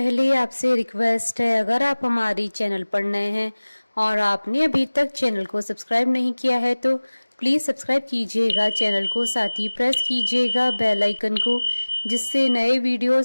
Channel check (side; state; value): both; inverted; correlation -1.00